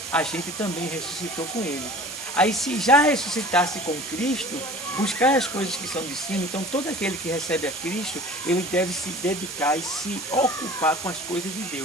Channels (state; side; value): noise; right; hiss, 8 dB below the sound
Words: a gente também ressuscitou com ele. Aí se já ressuscitasse com Cristo, buscar as coisas que são de cima, então todo aquele que recebe a Cristo, ele deve se dedicar e se ocupar com as coisas de